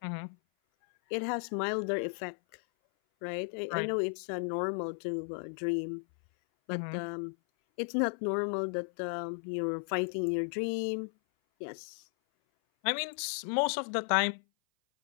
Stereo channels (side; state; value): right; silent; 55 dB below the other